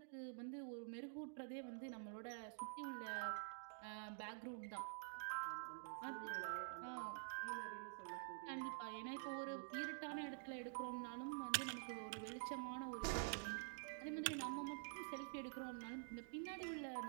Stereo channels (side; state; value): left; silent; digital silence